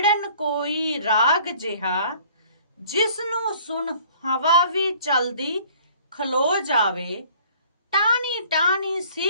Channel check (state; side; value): inverted; both; correlation -0.54